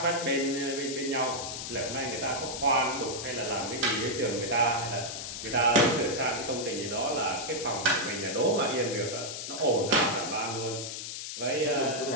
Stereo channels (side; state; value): left; noise; hiss, 6 dB below the sound